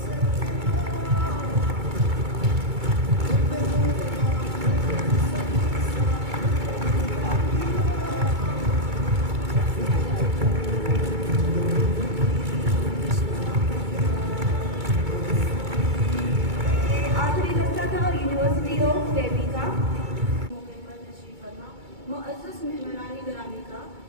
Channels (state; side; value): late; left; 2.2 ms